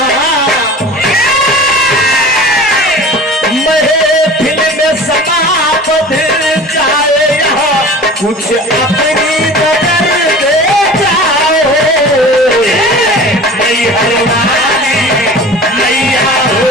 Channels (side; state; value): both; normal; correlation 0.40